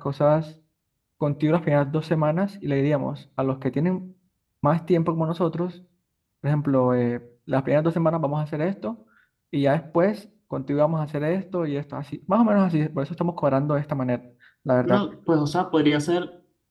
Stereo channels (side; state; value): both; identical; correlation 1.00